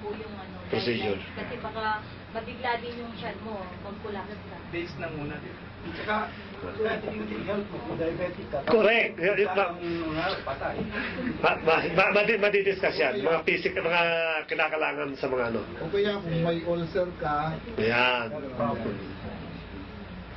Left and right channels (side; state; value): both; identical; correlation 1.00